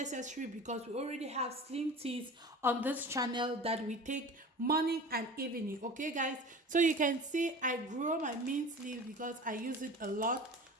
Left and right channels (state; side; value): normal; both; correlation 0.37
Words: because we already have slim teas on this channel that we take morning and evening. Okay guys, so you can see I grow my mint leaf because I use it a lot.